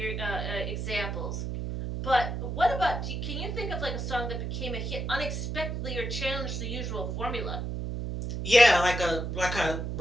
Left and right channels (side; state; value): right; noise; hum, 3 dB below the sound